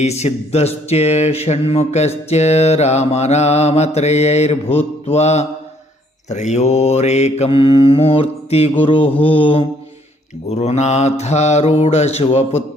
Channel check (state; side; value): normal; both; correlation 0.65